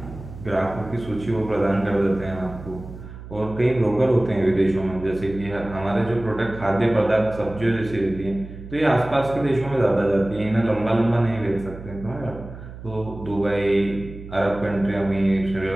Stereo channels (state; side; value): noise; right; hum, 14 dB below the sound